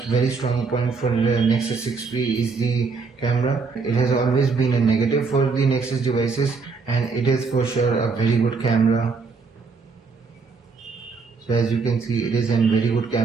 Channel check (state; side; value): quieter; left; 4.7 dB